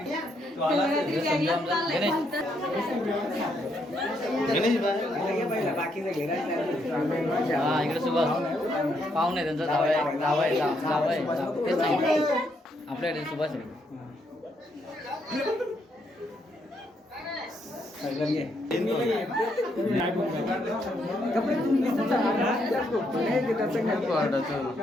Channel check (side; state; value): both; normal; correlation 0.75